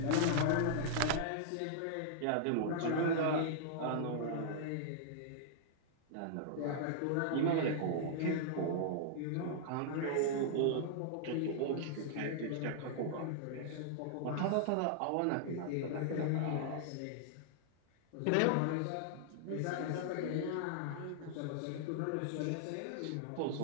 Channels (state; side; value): different; both; correlation -0.01